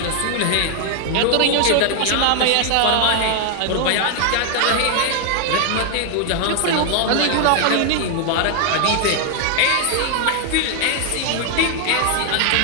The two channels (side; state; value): both; different; correlation 0.00